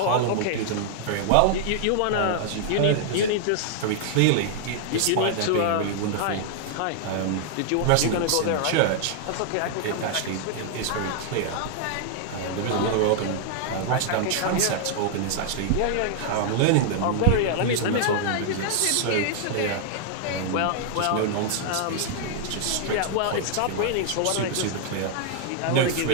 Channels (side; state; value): both; different; correlation -0.01